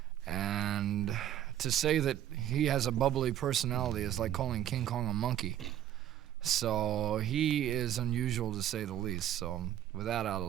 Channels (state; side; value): quieter; left; 11.6 dB